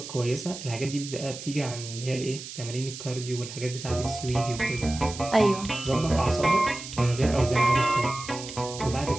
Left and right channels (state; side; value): noise; right; hiss, 11 dB below the sound